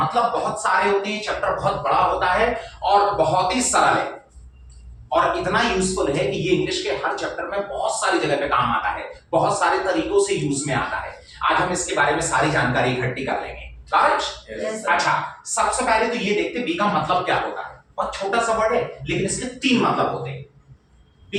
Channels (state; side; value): identical; both; correlation 1.00